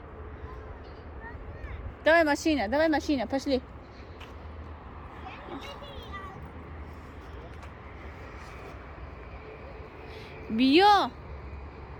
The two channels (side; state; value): both; identical; correlation 1.00